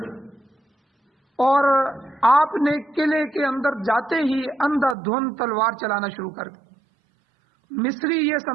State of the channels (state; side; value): drops out; left; at 5.0 s